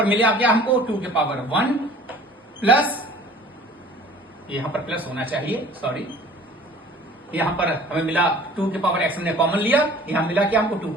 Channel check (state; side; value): normal; both; correlation 0.48